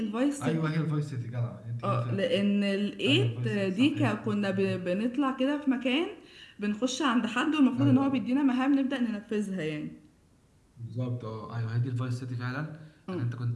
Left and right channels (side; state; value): both; identical; correlation 1.00